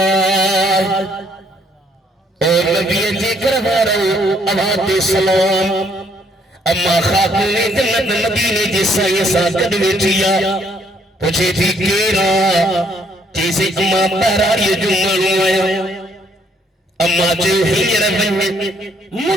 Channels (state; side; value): normal; both; correlation 0.68